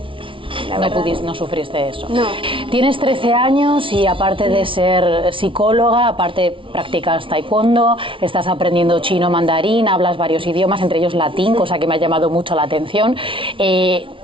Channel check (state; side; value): late; left; 0.25 ms